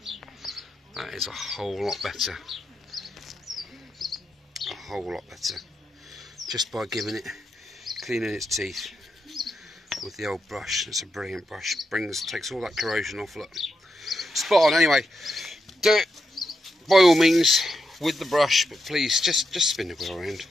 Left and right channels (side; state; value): both; normal; correlation 0.84